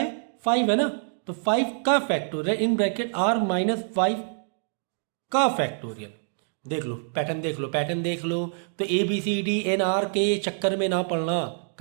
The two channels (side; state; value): left; silent; digital silence